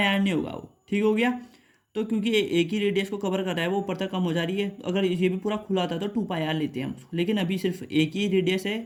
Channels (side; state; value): both; identical; correlation 1.00